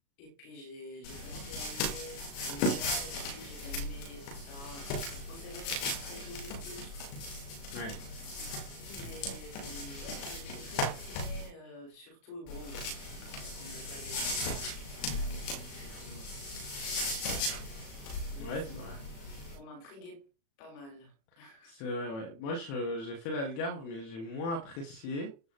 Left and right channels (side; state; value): right; late; 36 ms